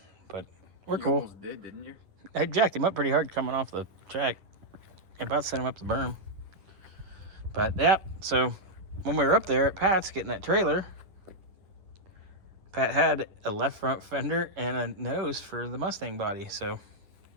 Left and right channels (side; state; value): left; late; 10 ms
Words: but we're You cool. almost did, didn't you? I jacked him up pretty hard coming off the track. About to send him up the berm. But, yep. So, when we were up there at Pat's getting that trailer, Pat had a left front fender and a nose for the Mustang body. So,